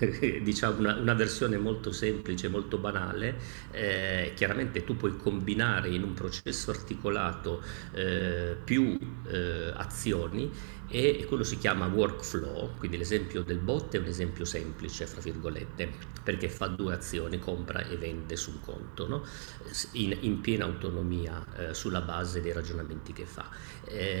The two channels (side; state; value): left; silent; digital silence